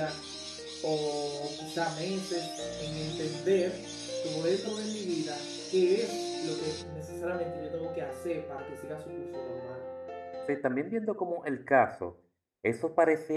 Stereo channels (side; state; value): both; identical; correlation 1.00